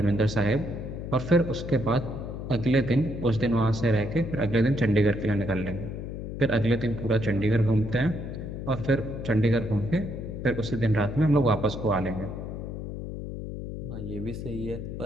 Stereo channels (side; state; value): left; noise; hum, 7 dB below the sound